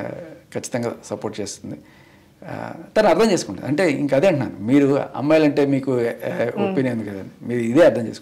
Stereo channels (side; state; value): both; identical; correlation 1.00